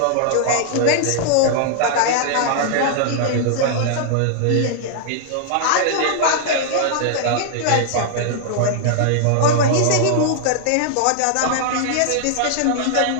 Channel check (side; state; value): both; different; correlation -0.01